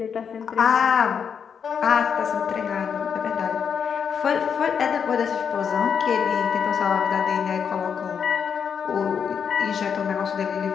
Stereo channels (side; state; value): right; quieter; 7.1 dB